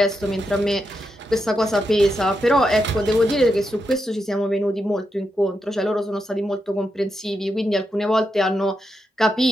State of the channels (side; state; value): both; normal; correlation 0.85